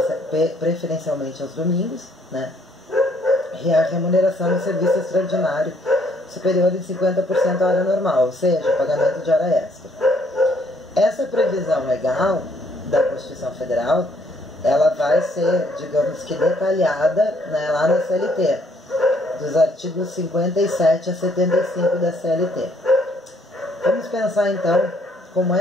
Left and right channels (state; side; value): normal; both; correlation 0.66